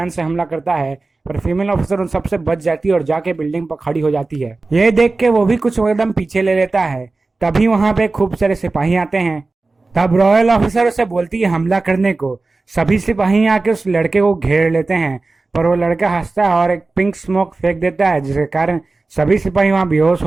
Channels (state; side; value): quieter; left; 3.5 dB